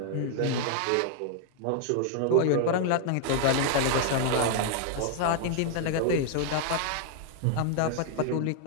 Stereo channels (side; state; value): both; different; correlation 0.00